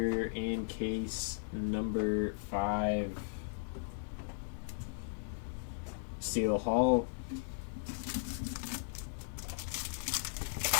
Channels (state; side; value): silent; right; 53 dB below the other